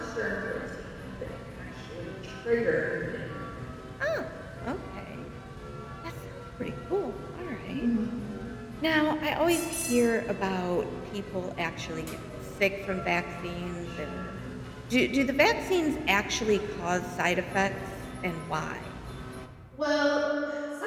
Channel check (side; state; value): both; identical; correlation 1.00